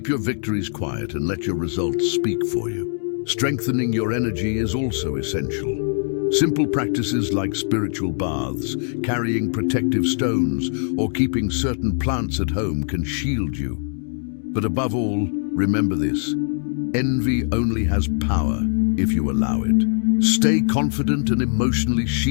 your victories quiet and let your results speak for you. Strengthening your energy is also essential. Simple practices like spiritual baths, carrying protective stones, or keeping certain plants at home can shield you. But above all, remember this: envy only has power if you allow it. Stay confident and emotionally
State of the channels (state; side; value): silent; right; digital silence